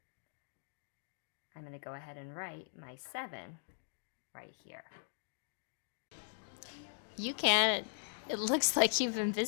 I'm going to go ahead and write my 7 right here. UCan, it looks like you've been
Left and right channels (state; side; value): silent; right; digital silence